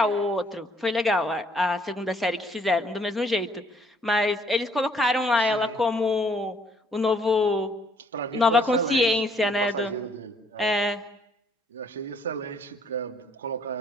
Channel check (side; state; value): both; normal; correlation 0.65